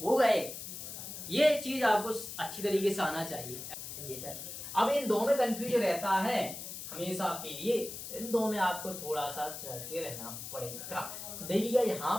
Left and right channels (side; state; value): left; noise; hiss, 9 dB below the sound